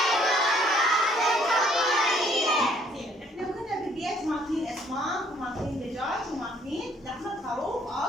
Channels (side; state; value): both; normal; correlation 0.63